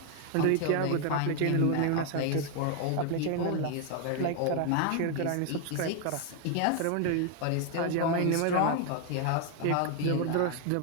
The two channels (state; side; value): different; both; correlation 0.01